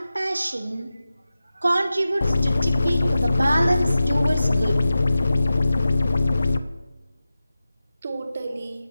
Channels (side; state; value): both; inverted; correlation -0.94